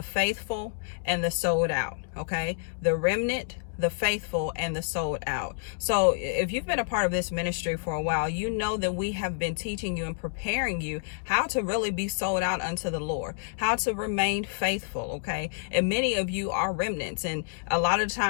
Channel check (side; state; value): right; silent; digital silence